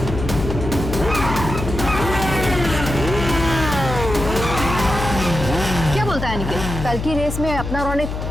क्या बोलता है निखिल? कल की रेस में अपना रौनक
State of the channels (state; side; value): noise; left; hum, 5 dB below the sound